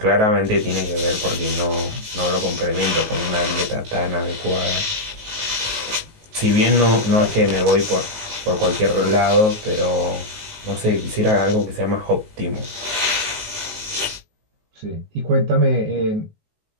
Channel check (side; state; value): left; late; 19 ms